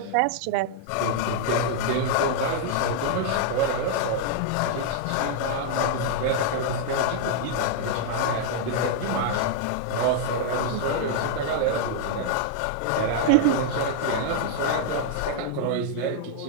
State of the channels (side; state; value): both; different; correlation -0.01